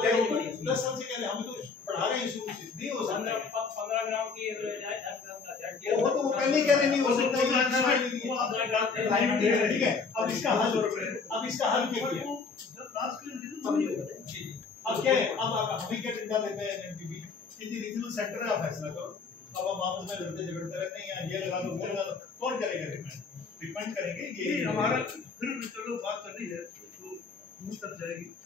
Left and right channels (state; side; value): quieter; right; 4.7 dB